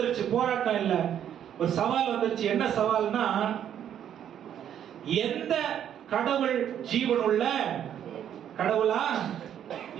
போராட்டம் இல்ல, ஒரு சவால் வந்துருச்சு. என்ன சவால்னா, எந்த கடவுள் ஜீவனுள்ள கடவுளா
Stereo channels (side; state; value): left; quieter; 9.8 dB